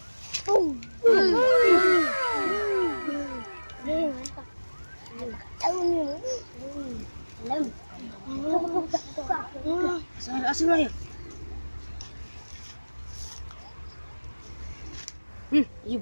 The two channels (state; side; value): inverted; both; correlation -1.00